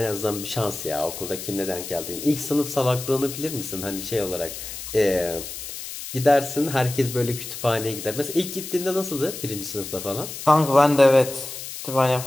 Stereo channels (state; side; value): noise; left; hiss, 9 dB below the sound